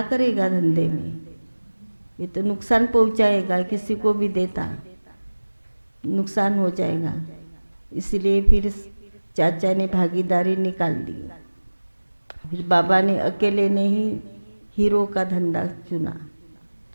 करेगा धंधे में, ये तो नुकसान पहुंचाएगा, किसी को भी देता नुकसान हो जाएगा। इसलिए फिर चाचा ने भागीदारी निकाल दी। फिर बाबा ने अकेले ने ही हीरो का धंधा चुना।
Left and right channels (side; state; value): both; inverted; correlation -1.00